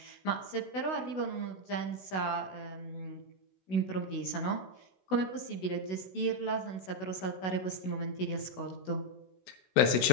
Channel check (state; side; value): late; right; 16 ms